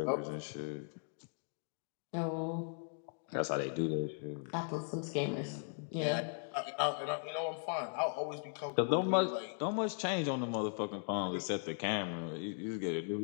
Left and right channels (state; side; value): silent; right; digital silence